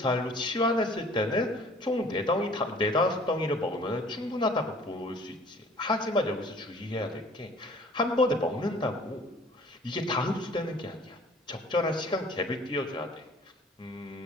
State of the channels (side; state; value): both; normal; correlation 0.52